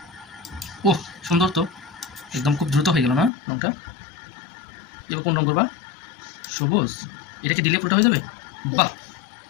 ওহ, সুন্দর তো, একদম খুব দ্রুত হয়ে গেল না রংটা। এবার কোন রং করবা? সবুজ। এটা কি দিলে পুরোটা হয়ে যাবে? বাহ,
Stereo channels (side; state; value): right; drops out; at 3.3 s